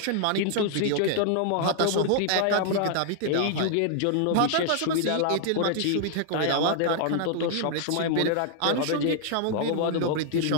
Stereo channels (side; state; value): both; different; correlation 0.00